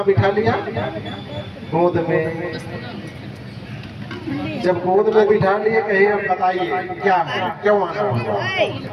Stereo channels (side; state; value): both; identical; correlation 1.00